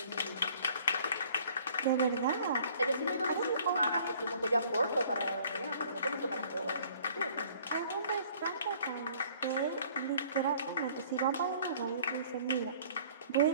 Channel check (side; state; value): both; inverted; correlation -0.55